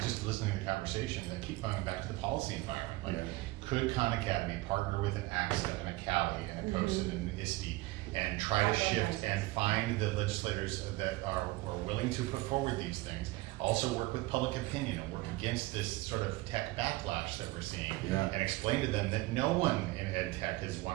listening to the conversation, I keep coming back to the policy environment. Like, could Khan Academy partner with an AXA and a Cali and a COSIN and an ISTE and try to shift and find the legislators that are willing to put forward these things. Also work with public opinion and work against this sort of tech backlash that we're seeing. Yeah. And explain to them that no one in ed tech has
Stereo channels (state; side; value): quieter; left; 20.4 dB